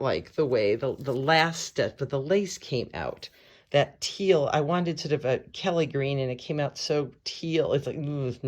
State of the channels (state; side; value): identical; both; correlation 1.00